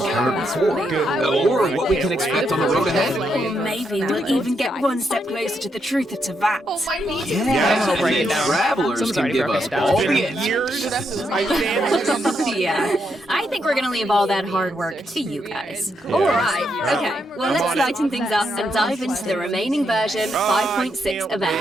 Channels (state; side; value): normal; both; correlation 0.80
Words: before, or what we can expect on the road ahead. Or maybe we'll even get one step closer to the truth of Tavat. Yeah, I'll break it and down. travelers Someone's can already give broken us it down. all It's the been answers. years. I stand. Yeah, I think we're gonna leave all that hard work to you guys. Alright, okay, well let's lighten things up and dive into the remaining version 5.6